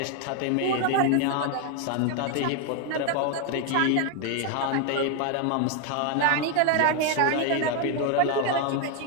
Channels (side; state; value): both; different; correlation 0.01